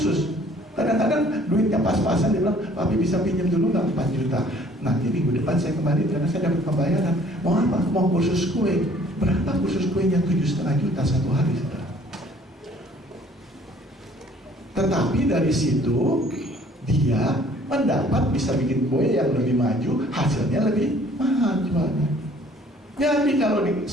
Kadang-kadang duitnya pas-pasan, dia bilang, Papi bisa pinjam dulu nggak 4 juta. Nanti minggu depan saya kembali karena saya dapat pembayaran. Mau apa? Mau kursus kue. Berapa kursus kuenya? 7,5 juta satu hari, saudara. Tetapi dari situ dia mendapat bisa bikin kue yang lebih maju, hasilnya lebih mahal jualnya. Jadi kalau di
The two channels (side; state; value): both; normal; correlation 0.57